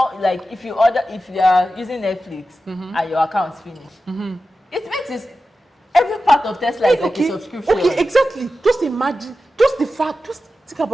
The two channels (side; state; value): both; normal; correlation 0.93